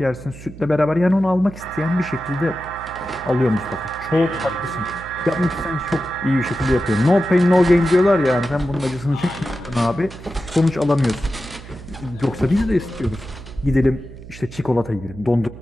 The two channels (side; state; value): right; noise; hum, 16 dB below the sound